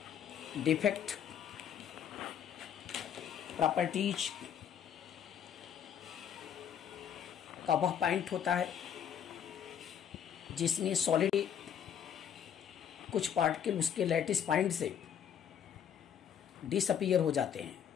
डिफेक्ट, प्रॉपर्टीज का वह पॉइंट होता है जिसमें सॉलिड कुछ पार्टिकल उसके लैटिस पॉइंट से डिसअपीयर हो जाते हैं,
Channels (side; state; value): right; quieter; 8.7 dB